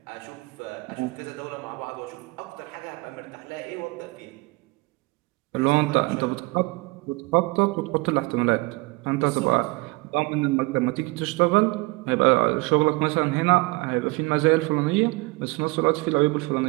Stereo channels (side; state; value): left; quieter; 24.6 dB